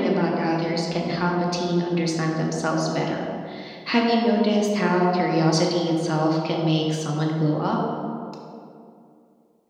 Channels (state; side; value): identical; both; correlation 1.00